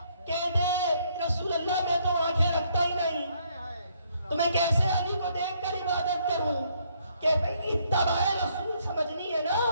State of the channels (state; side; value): inverted; both; correlation -0.69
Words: رسول اللہ میں تو آنکھیں رکھتا ہی نہیں، تو میں کیسے علی کو دیکھ کر عبادت کروں؟ کہ بھئی اتباع رسول سمجھنی ہے نا.